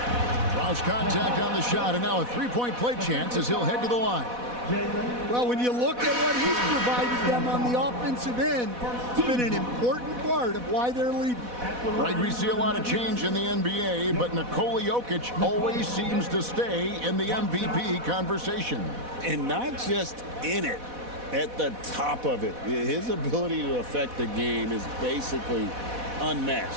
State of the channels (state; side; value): late; left; 4.1 ms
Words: Draws contact on the shot, and now a three-point play chance as he'll head to the line. Well, when you look at what he's provided them on the offensive end, it's been an important part of why they're leading. Right, we see a lot of change in the NBA, but Nikola Jokic always seems to stay in the MVP conversation. And not just in it, at the top of it. His ability to affect the game is basically